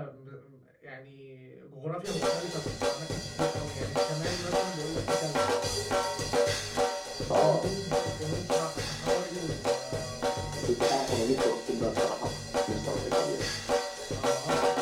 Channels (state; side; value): identical; both; correlation 1.00